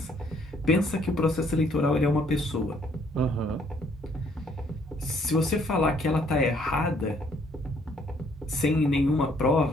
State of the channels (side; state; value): both; normal; correlation 0.65